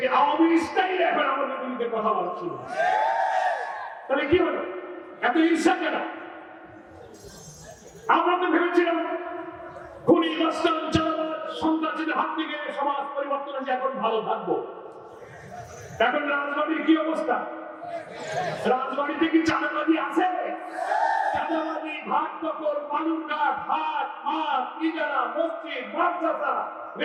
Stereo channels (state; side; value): identical; both; correlation 1.00